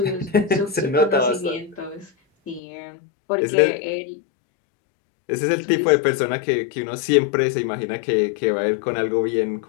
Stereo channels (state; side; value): drops out; right; at 2.6 s